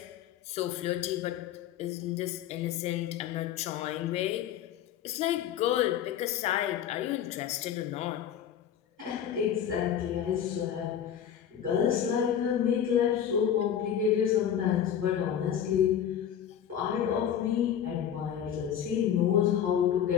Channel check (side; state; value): right; quieter; 9.4 dB